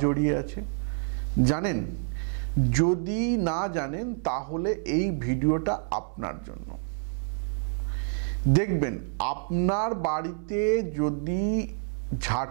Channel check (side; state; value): left; silent; digital silence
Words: জড়িয়ে আছে? জানেন? যদি না জানেন তাহলে এই ভিডিওটা আপনার জন্য। দেখবেন আপনার বাড়িতে যদি